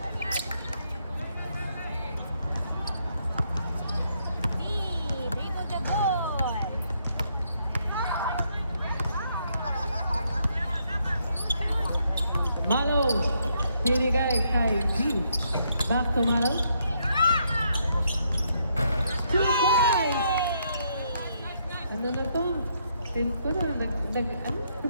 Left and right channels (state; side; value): inverted; both; correlation -0.74